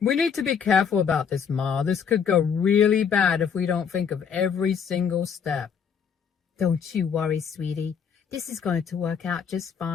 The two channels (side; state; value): right; quieter; 6.9 dB